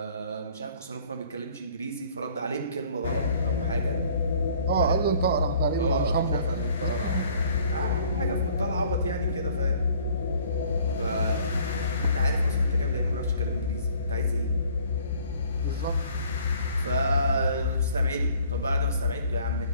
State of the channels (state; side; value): inverted; both; correlation -0.56